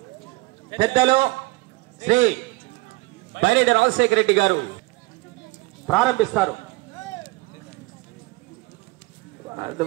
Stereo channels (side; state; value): left; quieter; 22.7 dB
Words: పెద్దలు శ్రీ బైరెడ్డి రాజశేఖర రెడ్డి గారు ప్రారంభిస్తారు.